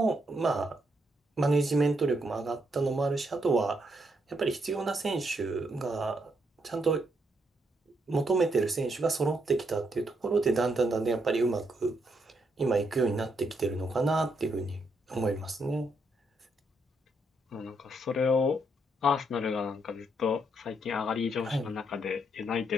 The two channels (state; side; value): normal; both; correlation 0.77